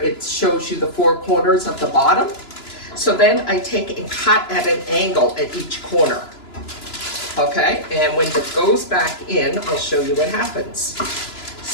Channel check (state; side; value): late; right; 2.9 ms